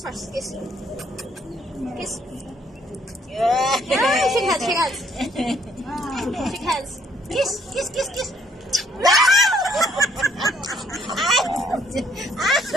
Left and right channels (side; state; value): both; normal; correlation 0.66